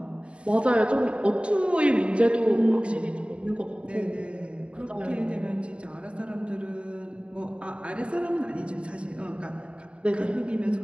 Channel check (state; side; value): late; left; 0.059 ms